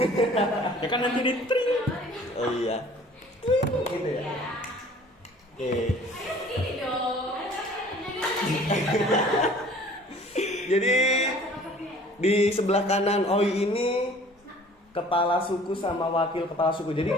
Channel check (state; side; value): normal; both; correlation 0.50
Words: Ya kan nanti di tring. Oh iya. Gitu ya. Oke. Jadi di sebelah kanan Oi ini kepala suku sama wakil kepala suku. Jadi